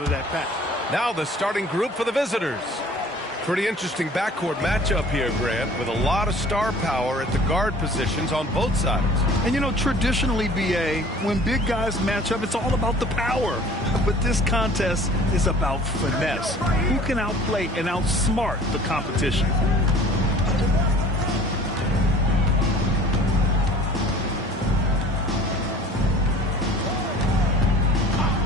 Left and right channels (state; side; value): normal; both; correlation 0.49